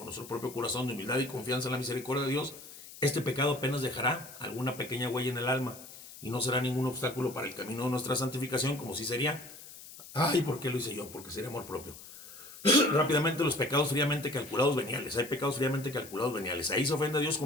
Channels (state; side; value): noise; left; hiss, 16 dB below the sound